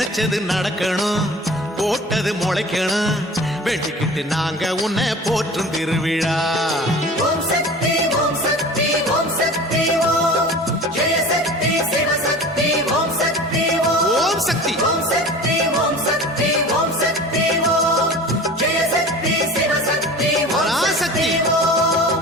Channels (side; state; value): both; normal; correlation 0.39